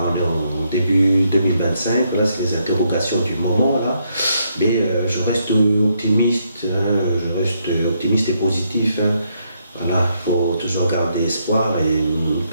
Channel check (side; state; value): both; inverted; correlation -0.75